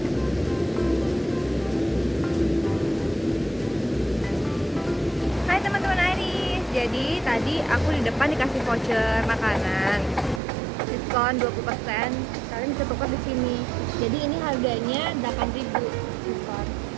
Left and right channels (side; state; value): left; drops out; at 10.4 s